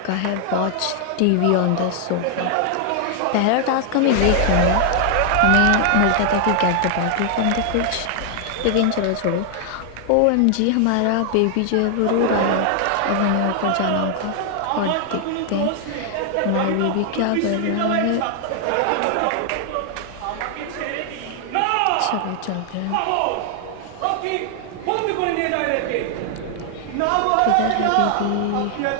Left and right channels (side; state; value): both; different; correlation 0.00